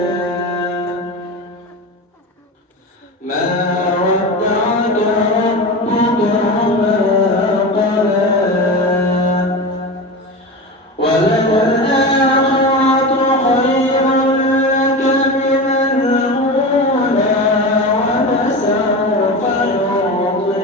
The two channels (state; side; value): normal; both; correlation 0.25